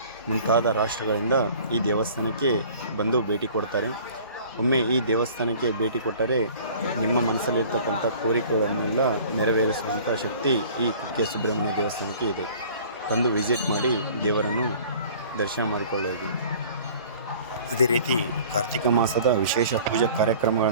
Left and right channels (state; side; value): inverted; both; correlation -0.48